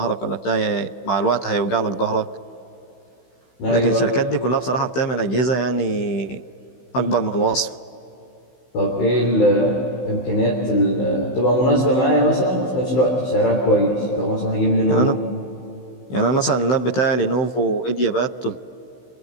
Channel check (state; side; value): late; right; 16 ms